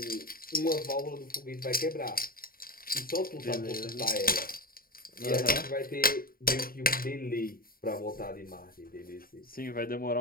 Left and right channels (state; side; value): late; right; 0.43 ms